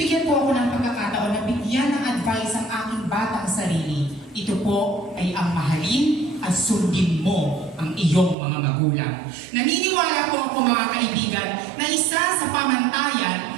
po ako ng pagkakataon na bigyan ng advice ang aking batang sarili, ito po ay ang mahalin at sundin mo ang iyong mga magulang. Naniniwala po ako mga kaibigan na isa sa pamantayan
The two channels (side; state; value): left; drops out; at 8.3 s